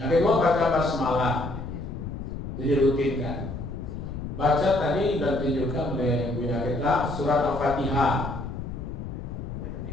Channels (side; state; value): left; noise; rumble, 7 dB below the sound